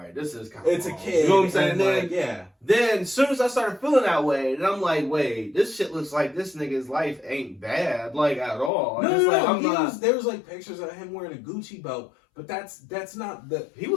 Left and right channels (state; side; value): drops out; right; at 8.7 s